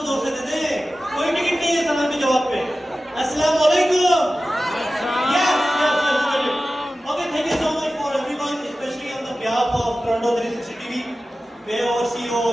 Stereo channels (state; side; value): normal; both; correlation 0.95